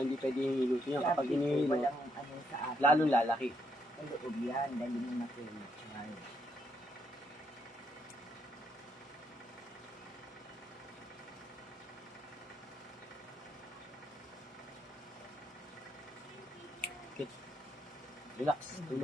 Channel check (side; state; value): both; normal; correlation 0.76